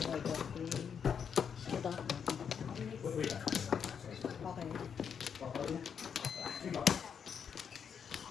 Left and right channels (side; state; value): right; quieter; 7.2 dB